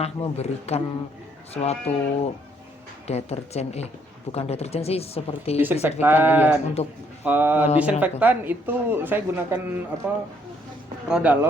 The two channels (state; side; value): normal; both; correlation 0.68